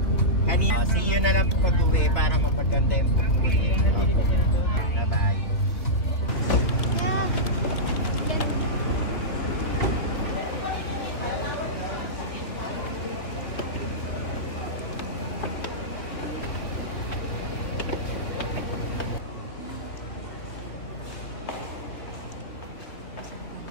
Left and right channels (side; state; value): right; late; 2.9 ms